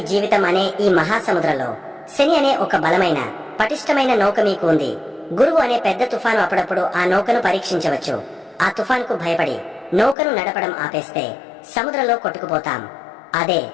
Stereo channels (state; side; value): drops out; right; at 10.2 s